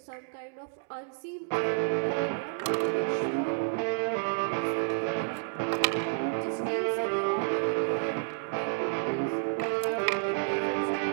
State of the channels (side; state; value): left; quieter; 38.8 dB